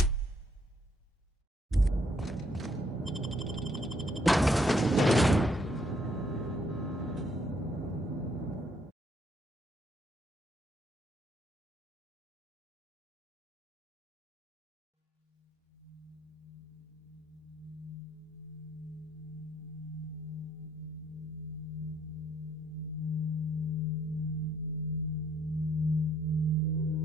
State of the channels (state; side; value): normal; both; correlation 0.68